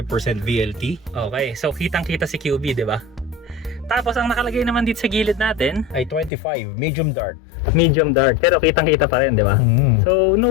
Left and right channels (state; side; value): drops out; right; at 6.3 s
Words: VLT. Okay, so kitang-kita si QB, di ba? Tapos ang nakalagay naman dito sa gilid natin Ay 25, medium dark. medium dark, pero kitang-kita pa rin, di ba? So